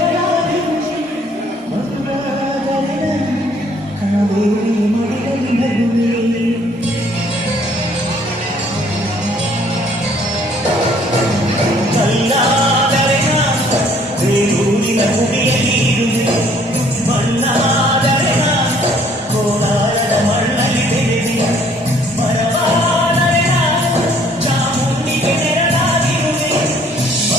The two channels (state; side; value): normal; both; correlation 0.60